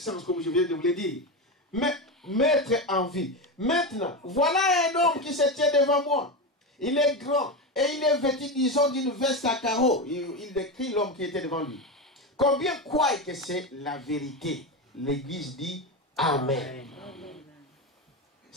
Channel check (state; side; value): normal; both; correlation 0.17